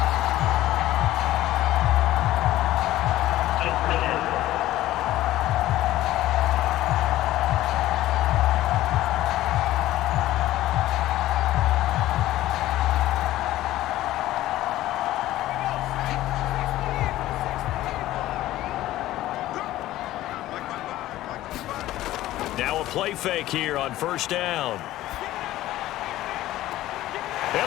Now a play fake here on first down. And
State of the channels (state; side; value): quieter; right; 15.2 dB